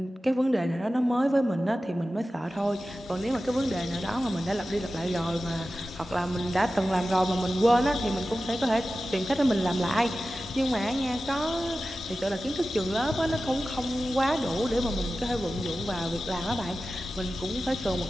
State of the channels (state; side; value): normal; both; correlation 0.94